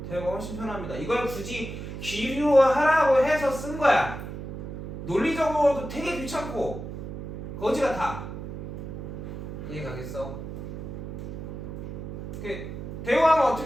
대우가 훨씬 편합니다. 이걸 굳이 기류하라고 해서 쓴 거야. 논리적으로도 되게 귀찮고 거지 같아. 이해 가겠어? 대우하면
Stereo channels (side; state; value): right; noise; hum, 8 dB below the sound